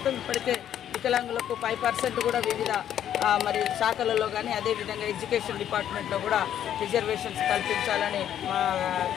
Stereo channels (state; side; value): quieter; right; 10.4 dB